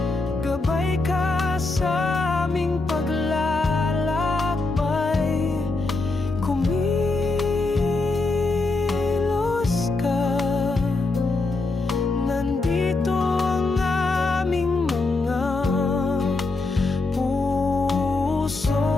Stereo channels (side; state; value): right; quieter; 3.4 dB